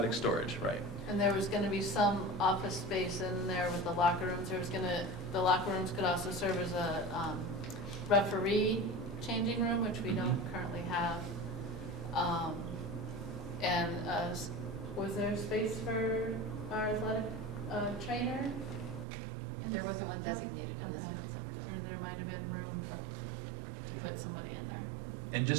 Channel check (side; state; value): left; drops out; at 19.1 s